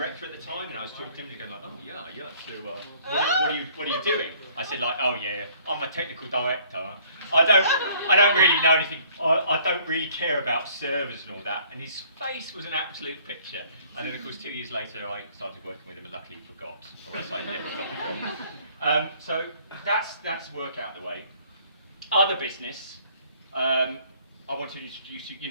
at the time, and I was talking to him, and going like, oh yeah. So what are you doing? I said like, oh yeah, I'm a technical director. I don't really know anything. I don't really care about servers and all that. And his face was an absolute picture. And then of course 2 years later, I started working with him, and luckily forgot, or else I never got. So that's work out the way. Other business. I want to introduce you. You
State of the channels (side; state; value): both; inverted; correlation -0.59